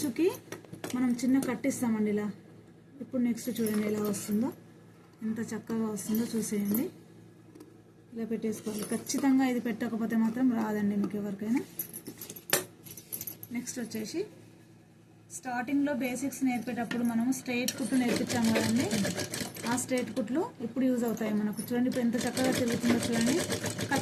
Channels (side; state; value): both; identical; correlation 1.00